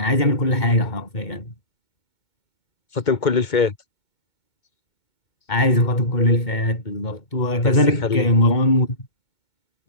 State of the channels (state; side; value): late; right; 2.2 ms